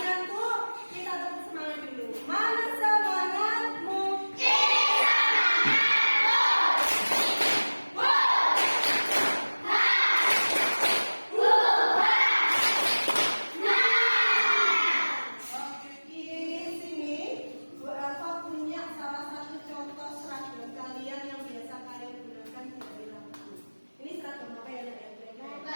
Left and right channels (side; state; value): both; inverted; correlation -1.00